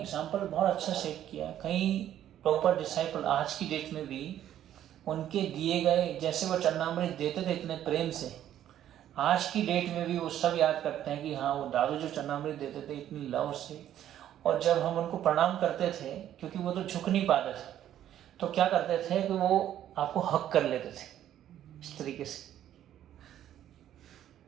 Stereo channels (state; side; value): quieter; left; 11.4 dB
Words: बहुत अच्छा सेट किया। कई प्रॉपर डिसाइपल आज की डेट में भी उनके दिए गए, जैसे वो चरणामृत देते थे इतने प्रेम से, आज की डेट में भी वो सब याद करते हैं कि हाँ वो दादू जो चरणामृत देते थे इतनी लव से। और जब हम उनको प्रणाम करते थे, क्योंकि वो तो झुक नहीं पाते थे, तो क्या करते थे कि वो आपको हक कर लेते थे इस तरीके से।